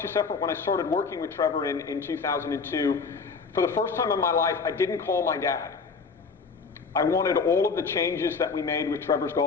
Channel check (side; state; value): right; quieter; 5.0 dB